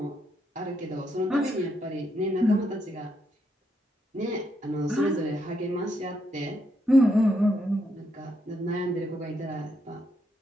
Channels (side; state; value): both; normal; correlation 0.78